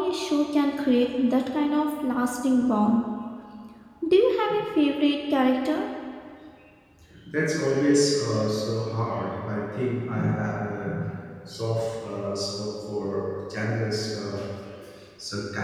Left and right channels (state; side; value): identical; both; correlation 1.00